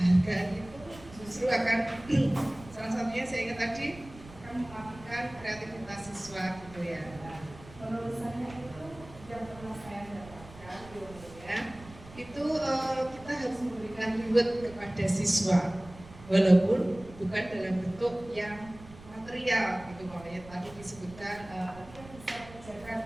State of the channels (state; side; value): noise; right; rumble, 19 dB below the sound